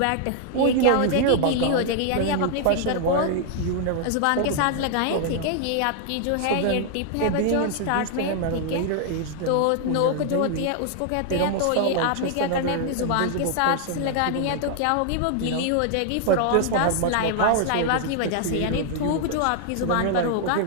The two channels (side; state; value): both; different; correlation 0.00